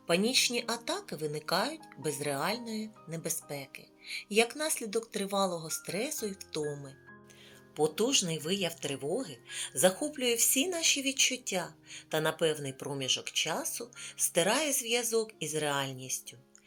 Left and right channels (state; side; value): identical; both; correlation 1.00